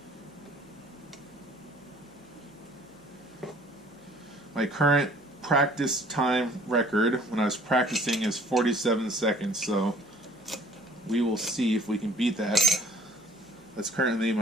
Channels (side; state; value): left; noise; hum, 28 dB below the sound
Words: My current practice time record when I was practicing is 47 seconds, so we will see if we can beat that. That's currently